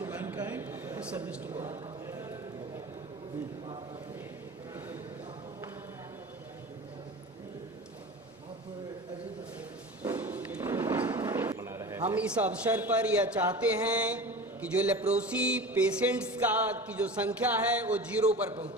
मैनकाइंड और सर्विस टू गॉड। हम इस अवसर पर यह चाहते हैं कि जो लेप्रोसी पेशेंट्स की जो संख्या है वो 0 पर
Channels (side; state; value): both; normal; correlation 0.33